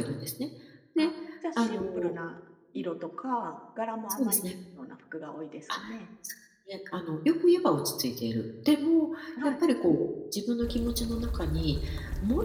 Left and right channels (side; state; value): both; identical; correlation 1.00